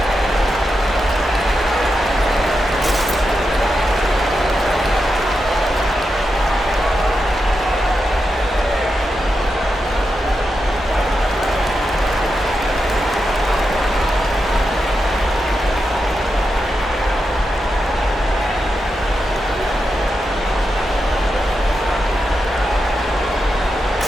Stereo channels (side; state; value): both; normal; correlation 0.87